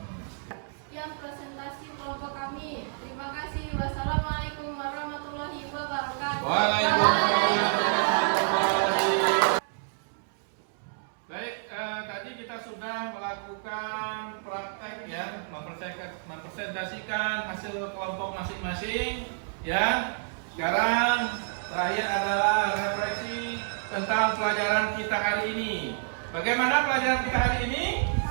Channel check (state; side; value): silent; left; 59 dB below the other